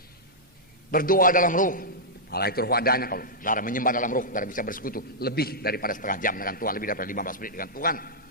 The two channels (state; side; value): normal; both; correlation -0.09